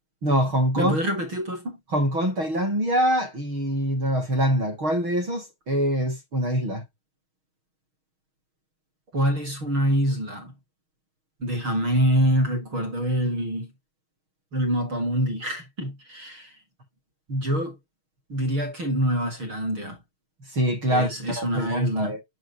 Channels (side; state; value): left; late; 6.4 ms